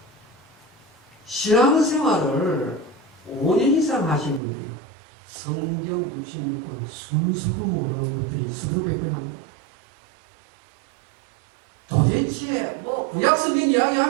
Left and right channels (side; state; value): left; drops out; at 4.4 s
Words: 신앙생활을 5년 이상 하신 분들이요, 성경 66권 순서도 모르는 것들이 수두룩백백합니다. 도대체 뭐 구약 성경